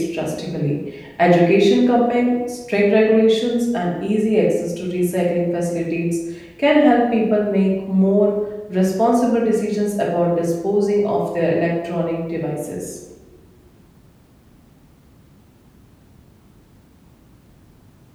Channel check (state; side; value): identical; both; correlation 1.00